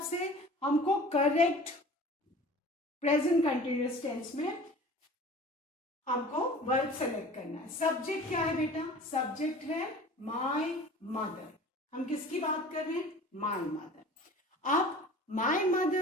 से हमको करेक्ट प्रेजेंट कंटिन्यूअस टेंस में हमको वर्ब सेलेक्ट करना है. सब्जेक्ट क्या है बेटा? सब्जेक्ट है माय मदर. हम किसकी बात कर रहे हैं? My mother. अब माय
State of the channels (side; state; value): both; normal; correlation 0.43